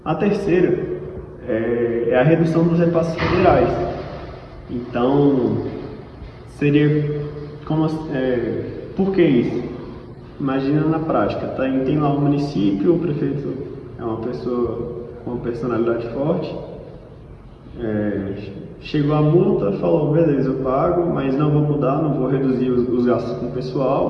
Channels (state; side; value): identical; both; correlation 1.00